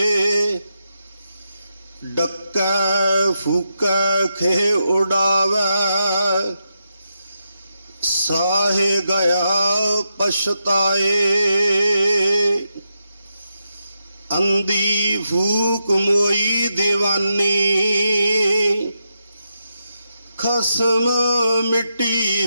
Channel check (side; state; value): both; inverted; correlation -0.85